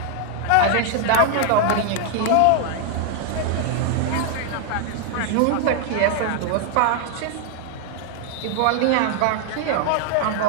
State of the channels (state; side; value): different; both; correlation 0.00